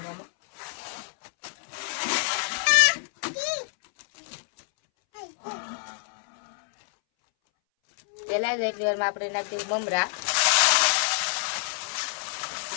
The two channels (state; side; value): silent; right; 60 dB below the other